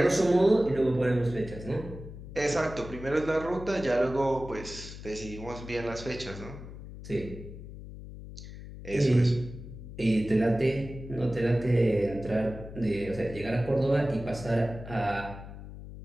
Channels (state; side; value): noise; left; hum, 13 dB below the sound